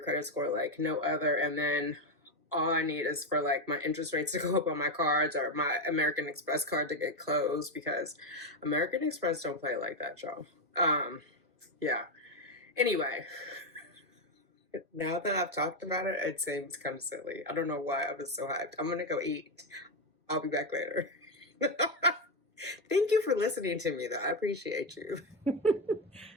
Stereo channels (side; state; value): both; normal; correlation 0.09